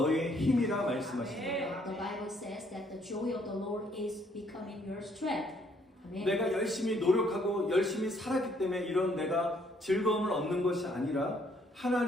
힘이라 말씀하십니다. The Bible says that the joy of the Lord is becoming your strength. Amen. 내가 열심히 노력하고 열심히 살았기 때문에 이런 내가 즐거움을 얻는 것이 아니라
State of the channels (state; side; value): normal; both; correlation 0.67